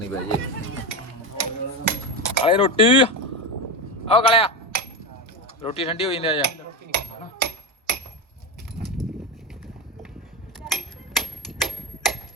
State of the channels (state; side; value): normal; both; correlation 0.18